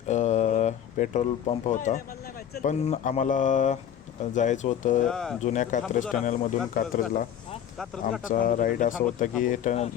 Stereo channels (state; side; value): quieter; right; 9.6 dB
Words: पेट्रोल पंप नाही होता नाही मला नाही माहिती चल पुढं. पण आम्हाला जायचं होतं जुन्या कात्रज टनेलमधून कात्रजला हा आमचा राईड असा होता की